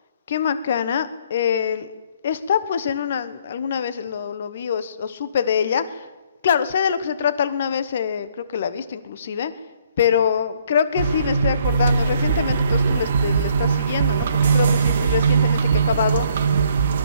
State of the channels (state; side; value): inverted; both; correlation -0.64